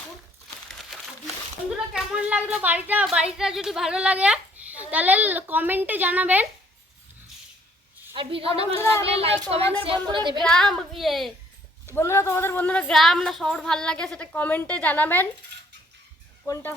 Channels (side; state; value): both; normal; correlation 0.63